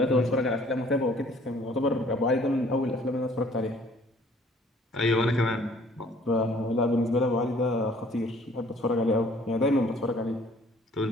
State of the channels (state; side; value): normal; both; correlation 0.57